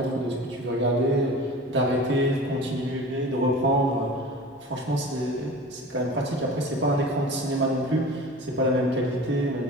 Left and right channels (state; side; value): normal; both; correlation 0.38